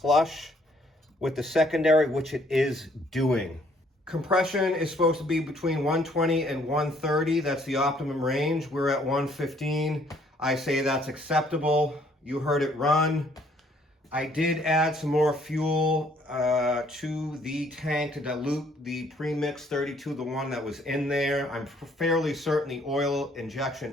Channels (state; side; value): normal; both; correlation 0.64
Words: with the secondary, which it is doing. Compression is supposed to be between 120 and 130. That's the optimum range. We're at 115. I say that's acceptable. You heard it run. I did add some more fuel to the tank to dilute the premix 32, the one that was in there. I'm fairly certain the oil injection